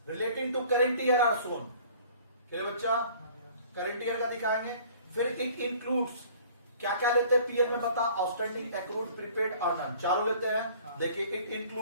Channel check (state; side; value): inverted; both; correlation -0.51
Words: relating to current year are shown. क्या बच्चा? करेंट ईयर का दिखाएंगे। फिर इट इंक्लूड्स क्या क्या लेते हैं पीएल में बता? आउटस्टैंडिंग, एक्रूड, प्रीपेड और नन, चारों लेते हैं। देखिए it